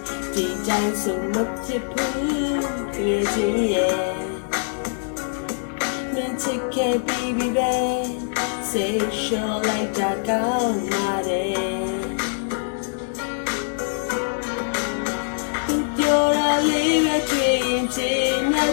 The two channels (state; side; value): silent; right; digital silence